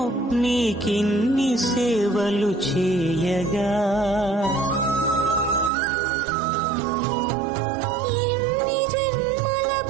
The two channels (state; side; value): drops out; left; at 5.7 s